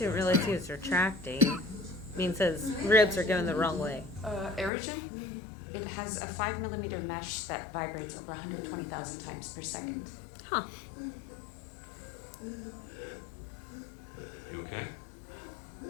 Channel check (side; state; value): right; drops out; at 4.7 s